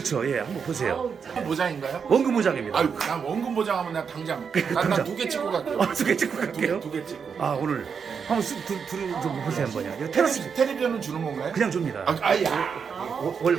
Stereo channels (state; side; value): quieter; left; 6.3 dB